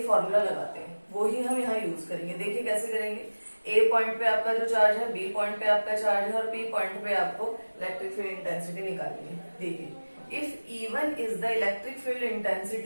फॉर्मूला लगाते हैं, वो ही हम यहाँ यूज करेंगे। देखिए कैसे करेंगे। ए पॉइंट पे आपका जो चार्ज है, बी पॉइंट पे आपका चार्ज है, और पी पॉइंट पे आपको इलेक्ट्रिक फील्ड इंटेंसिटी निकालनी है। देखिए, if E1 is the electric field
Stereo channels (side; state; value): both; inverted; correlation -1.00